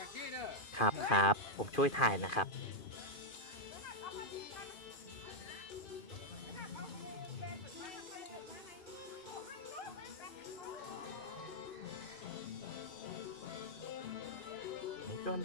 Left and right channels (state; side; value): late; right; 2.4 ms